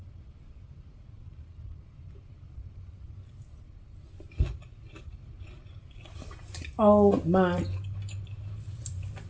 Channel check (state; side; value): identical; both; correlation 1.00